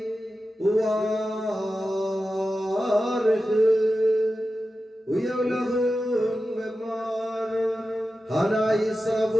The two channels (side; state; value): both; normal; correlation 0.93